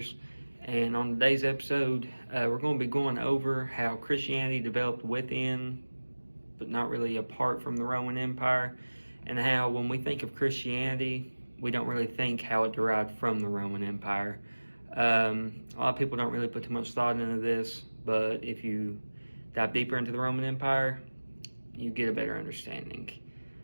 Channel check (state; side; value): inverted; both; correlation -1.00